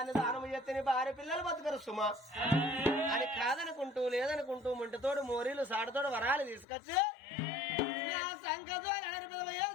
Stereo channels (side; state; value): right; drops out; at 6.7 s